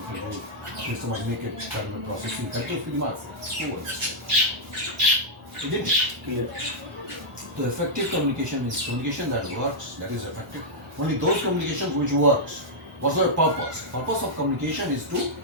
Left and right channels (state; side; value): normal; both; correlation -0.07